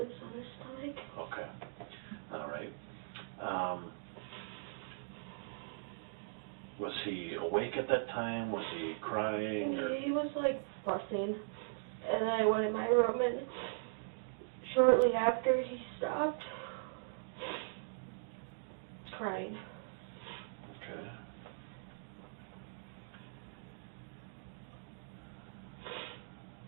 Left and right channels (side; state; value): left; silent; digital silence